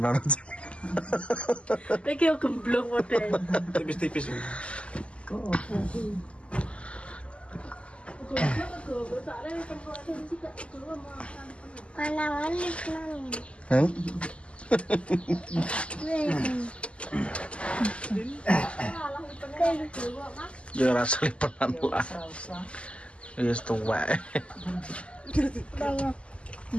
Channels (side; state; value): right; late; 0.057 ms